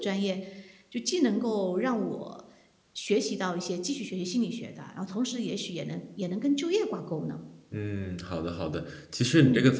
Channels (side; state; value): both; identical; correlation 1.00